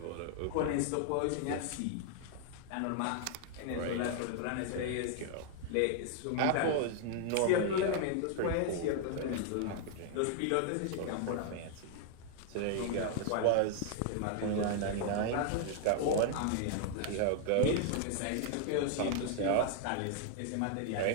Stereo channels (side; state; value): both; different; correlation 0.00